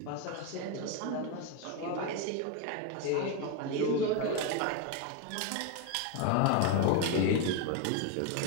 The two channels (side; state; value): both; different; correlation 0.02